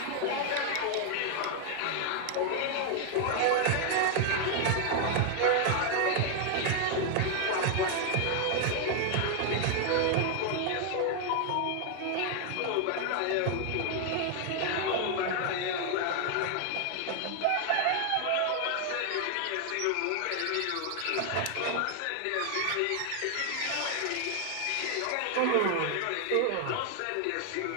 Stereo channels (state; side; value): different; both; correlation 0.00